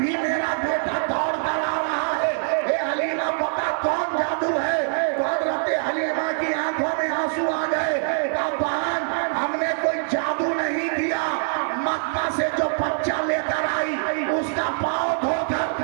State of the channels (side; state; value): left; silent; digital silence